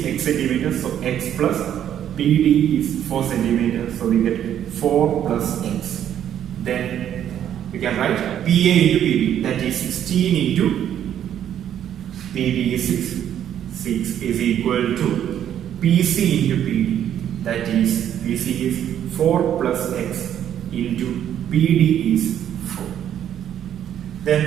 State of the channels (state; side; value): quieter; left; 10.2 dB